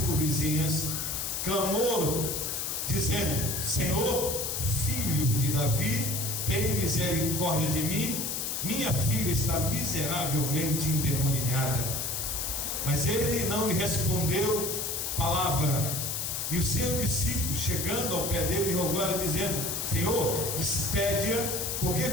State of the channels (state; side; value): noise; left; hiss, 2 dB below the sound